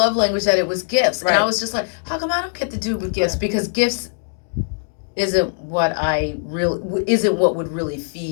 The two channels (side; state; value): right; silent; digital silence